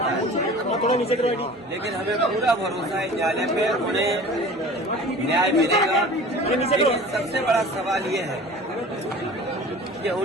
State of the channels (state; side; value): normal; both; correlation 0.41